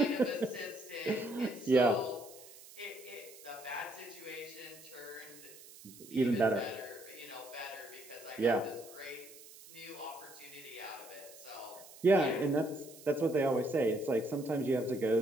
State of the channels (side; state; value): right; noise; hiss, 19 dB below the sound